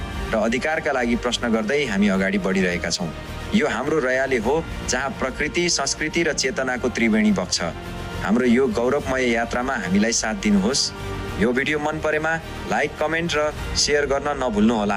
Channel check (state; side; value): identical; both; correlation 1.00